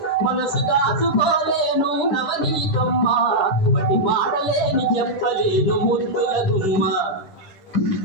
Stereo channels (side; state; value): right; late; 10 ms